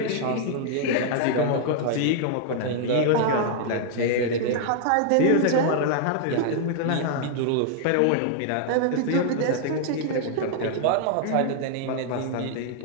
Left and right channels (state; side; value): different; both; correlation 0.00